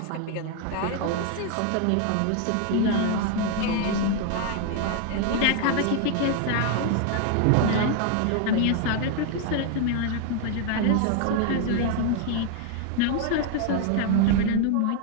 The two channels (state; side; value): different; both; correlation 0.00